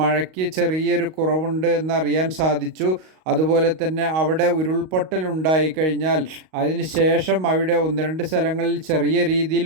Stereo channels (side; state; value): left; late; 38 ms